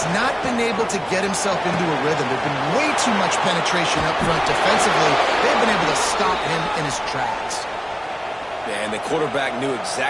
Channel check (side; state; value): both; identical; correlation 1.00